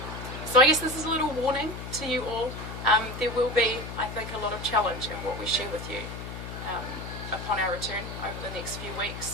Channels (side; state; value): left; noise; hum, 9 dB below the sound